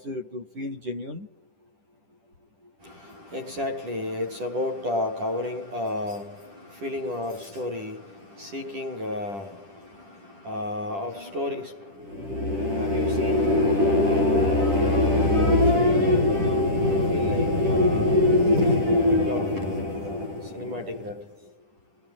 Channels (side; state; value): left; late; 10 ms